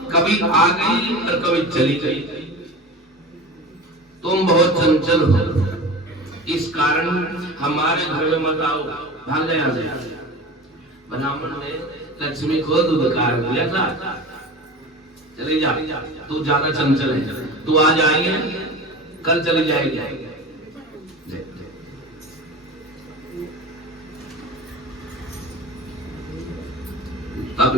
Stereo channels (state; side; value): normal; both; correlation 0.33